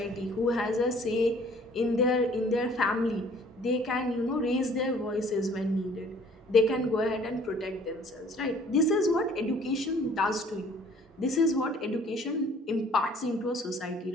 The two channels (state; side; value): normal; both; correlation 0.55